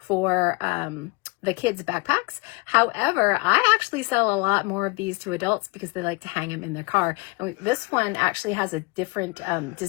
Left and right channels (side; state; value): right; quieter; 26.2 dB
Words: the kids' backpacks. However, I actually sell a lot more of these to adults because they like to hang them in their car. And this one actually has a different